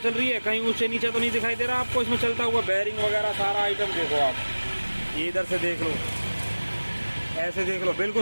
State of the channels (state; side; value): inverted; both; correlation -1.00